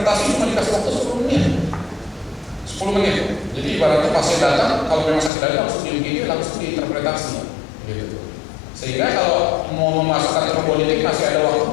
cuma dikasih waktu 10 menit. 10 menit. Jadi ibaratnya pasien datang, kalau memang sakit dada langsung di UGD, langsung diinterpretasi, gitu. Sehingga kalau mau memasukkan trombolytik masih ada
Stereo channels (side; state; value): right; drops out; at 5.3 s